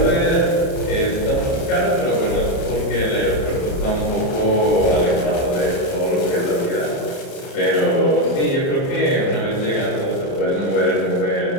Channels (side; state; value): right; late; 30 ms